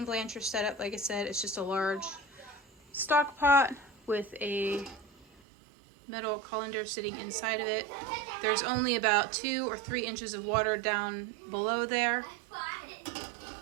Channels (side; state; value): left; drops out; at 5.4 s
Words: blancher setup. Like I said, it's just a large stock pot with a metal colander sitting inside of it. There's only about 2 or 3 inches of water down below there.